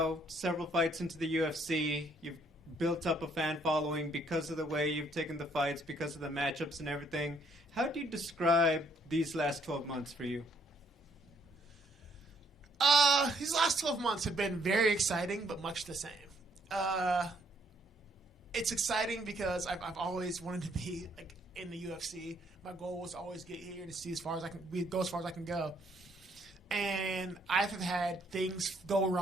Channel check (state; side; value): normal; both; correlation 0.67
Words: several fights into the UFC, you've built up a fan following because of the way you've taken the fights, because of the matchups and everything. How do you describe these last 12 months for you? These last 12 months have been very exciting, but much the same. It's exciting because I've always wanted to be like in the UFC. My goal was to always get here to see as far as I can go as far as I can go. And I've had things go